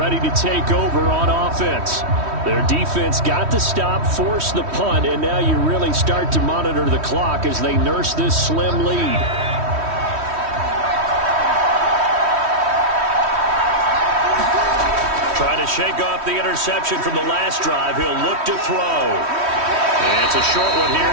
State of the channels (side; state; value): left; late; 3.1 ms